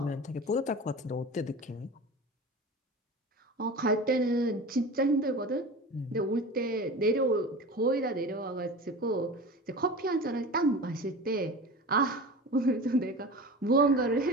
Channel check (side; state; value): both; normal; correlation 0.33